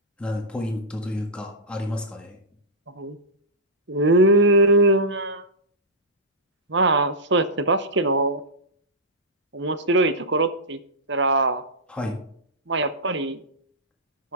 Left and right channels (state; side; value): normal; both; correlation -0.14